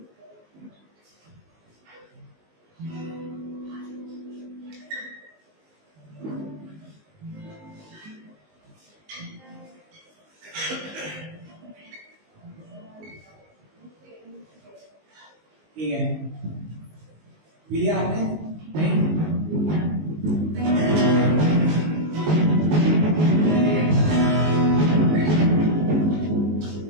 ठीक है, पी लिया आपने? नहीं?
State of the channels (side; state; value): left; late; 19 ms